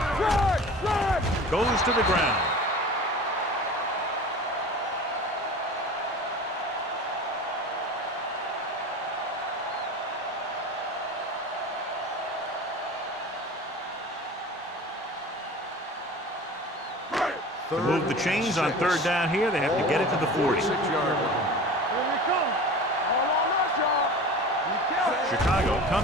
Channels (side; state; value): both; normal; correlation 0.36